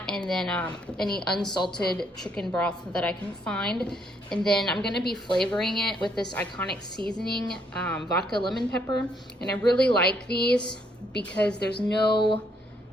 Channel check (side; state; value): both; normal; correlation 0.71